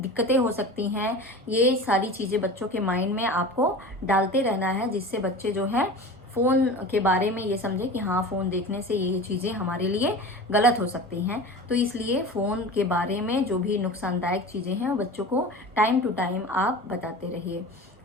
हो सकती हैं, ये सारी चीज़ें बच्चों के माइंड में आपको डालते रहना है, जिससे बच्चे जो है फ़ोन के बारे में ये समझे कि हाँ, फ़ोन देखने से ये चीज़ें हमारे लिए गलत हो सकती हैं। तो इसलिए फ़ोन के बारे में जो भी नुकसानदायक चीज़ें हैं वो बच्चों को टाइम टू टाइम आप बताते रहिए।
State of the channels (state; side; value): normal; both; correlation 0.34